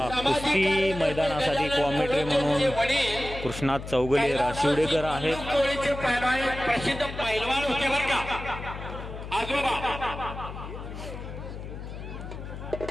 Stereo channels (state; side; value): noise; left; hum, 10 dB below the sound